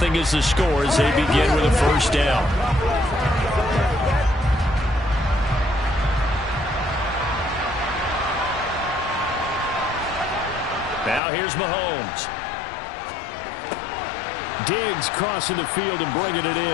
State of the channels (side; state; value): right; drops out; at 11.2 s